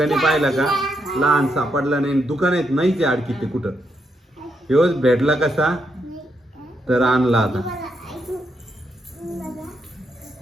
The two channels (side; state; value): both; normal; correlation 0.79